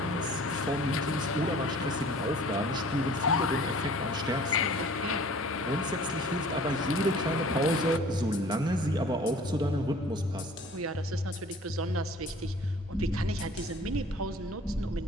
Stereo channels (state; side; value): normal; both; correlation 0.49